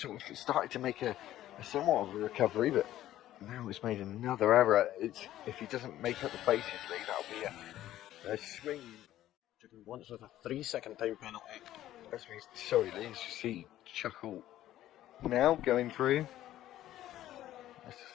of started to make a somewhat of a recovery, but now he's made another error. If he doesn't make up the places lead, that'll be a swing. Once with a 3-second time penalty. That's me. Sorry, Lee. You see Chuckle now going through.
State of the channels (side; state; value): right; quieter; 13.5 dB